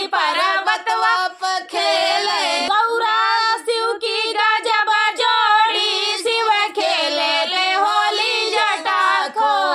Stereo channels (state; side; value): identical; both; correlation 1.00